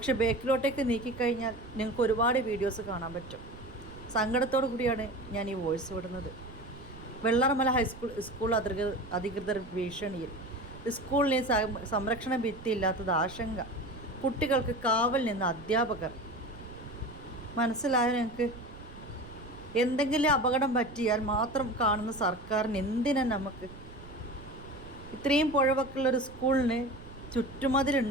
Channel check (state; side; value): noise; right; rumble, 16 dB below the sound